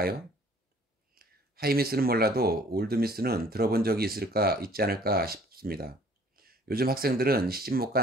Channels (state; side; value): normal; both; correlation 0.56